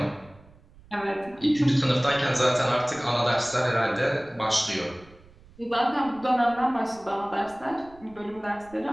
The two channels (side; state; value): right; noise; rumble, 25 dB below the sound